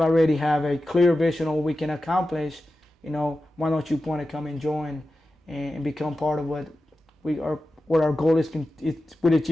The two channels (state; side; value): normal; both; correlation 0.92